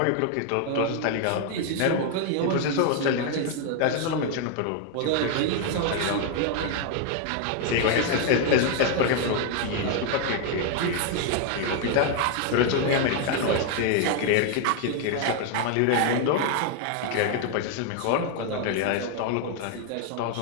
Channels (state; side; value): different; both; correlation 0.01